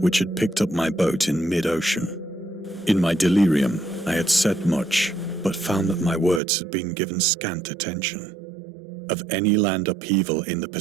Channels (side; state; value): left; drops out; at 6.4 s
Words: had picked up my boat in mid-ocean. In my delirium, I had said much, but found that my words had been given scant attention. Of any land upheaval in the